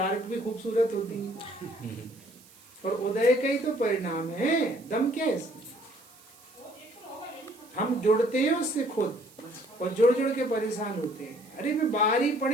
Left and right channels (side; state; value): right; noise; hiss, 25 dB below the sound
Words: भी खूबसूरत होती है, और उदय का ही तो परिणाम है। दम क्या है इसमें? हम जुड़ते हैं उससे खुद, और जुड़ के परेशान होते हैं। अरे मैं बाहर ही